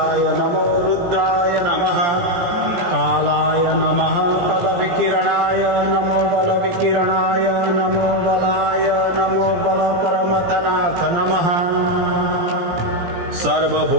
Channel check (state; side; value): late; left; 17 ms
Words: नमो रुद्राय नमः कालाय नमः कलविकिरणाय नमो बलविकिरणाय नमो बलाय नमो बलपरमतनाथ नमः